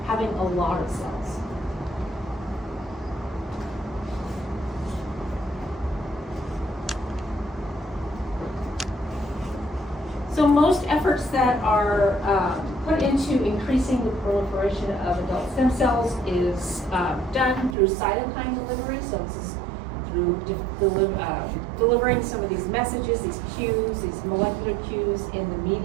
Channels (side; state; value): left; drops out; at 17.8 s